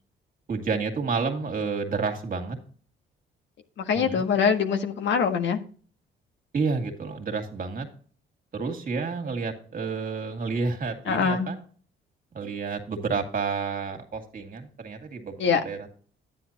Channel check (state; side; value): normal; both; correlation 0.29